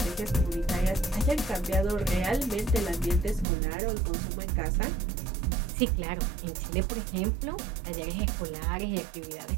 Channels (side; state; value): left; drops out; at 3.5 s